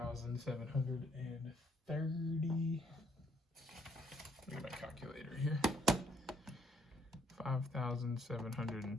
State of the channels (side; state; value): both; normal; correlation 0.69